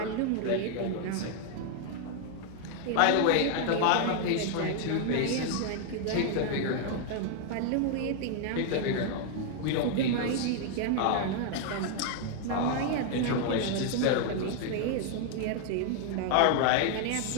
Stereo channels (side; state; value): both; different; correlation 0.00